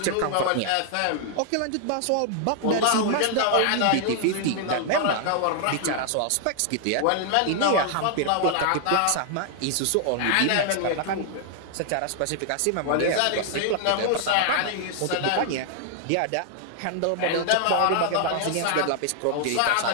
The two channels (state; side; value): different; both; correlation 0.00